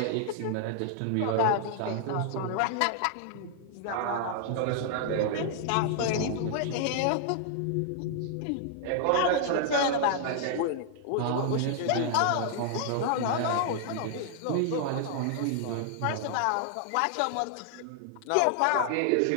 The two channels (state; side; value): different; both; correlation 0.00